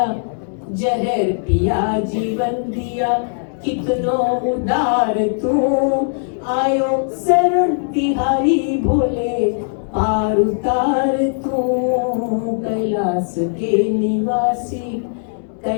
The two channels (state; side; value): silent; right; digital silence